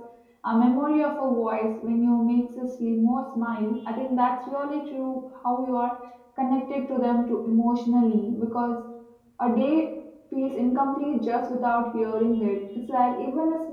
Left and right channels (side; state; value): both; identical; correlation 1.00